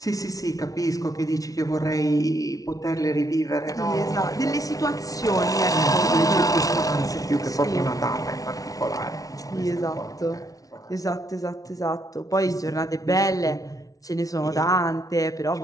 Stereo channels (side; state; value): right; late; 0.18 ms